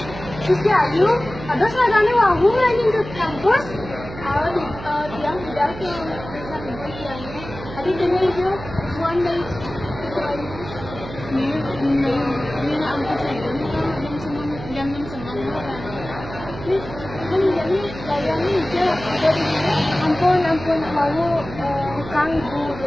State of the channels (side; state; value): right; noise; hum, 12 dB below the sound